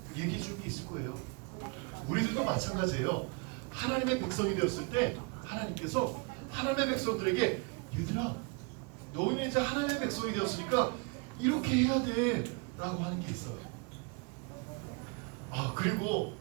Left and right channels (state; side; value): quieter; left; 32.5 dB